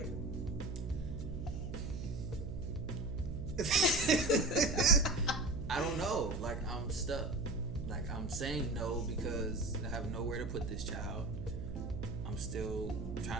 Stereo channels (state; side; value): noise; right; hum, 6 dB below the sound